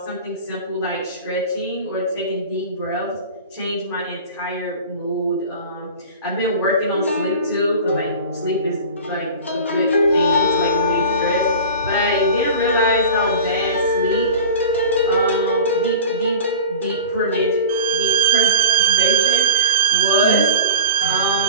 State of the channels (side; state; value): both; inverted; correlation -0.35